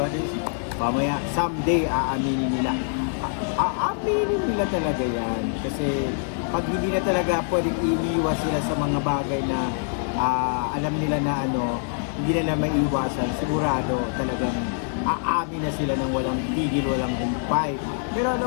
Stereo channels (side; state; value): right; silent; 57 dB below the other